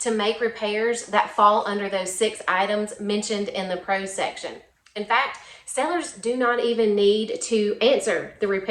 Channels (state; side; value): identical; both; correlation 1.00